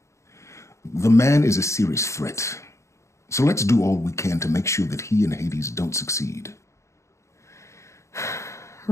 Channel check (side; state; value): right; late; 0.14 ms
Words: The man is a serious threat. So let's do all we can to make sure that he and Hades don't succeed.